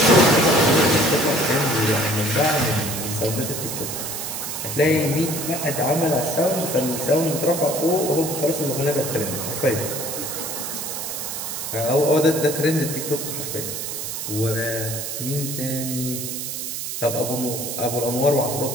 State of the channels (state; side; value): noise; right; hiss, 5 dB below the sound